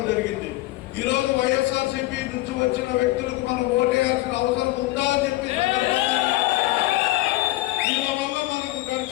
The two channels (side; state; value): right; quieter; 18.6 dB